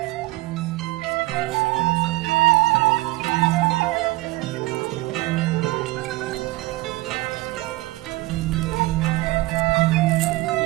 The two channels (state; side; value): quieter; left; 20.4 dB